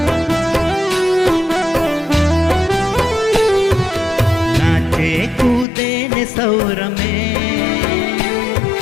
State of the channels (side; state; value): right; drops out; at 5.7 s